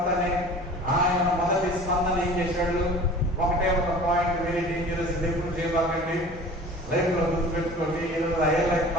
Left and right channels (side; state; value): both; normal; correlation 0.43